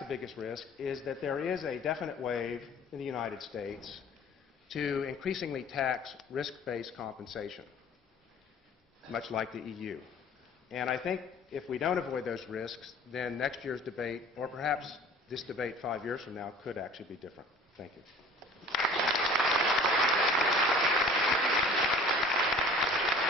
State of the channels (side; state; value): both; normal; correlation 0.46